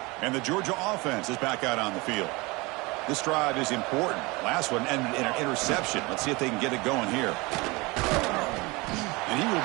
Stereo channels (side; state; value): left; quieter; 24.6 dB